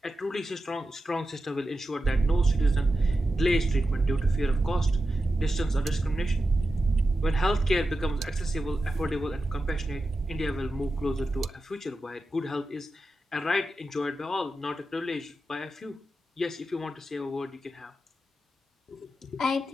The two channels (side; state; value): both; normal; correlation 0.91